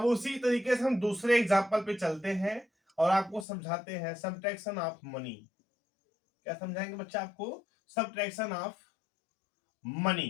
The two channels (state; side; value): drops out; right; at 3.5 s